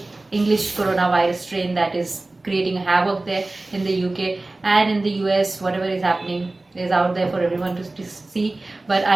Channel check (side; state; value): left; quieter; 3.0 dB